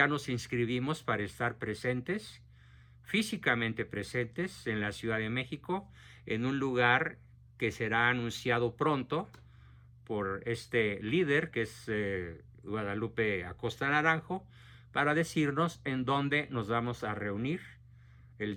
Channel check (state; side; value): identical; both; correlation 1.00